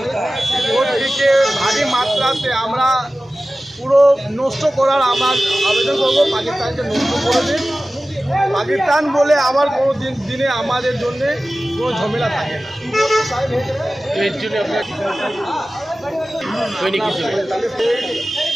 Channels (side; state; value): both; normal; correlation 0.96